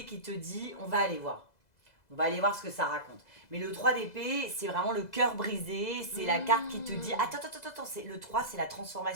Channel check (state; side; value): late; right; 2.0 ms